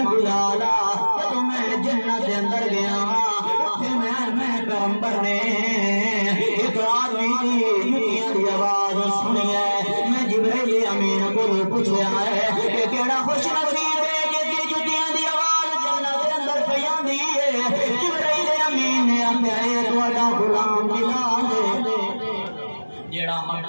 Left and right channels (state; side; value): inverted; both; correlation -1.00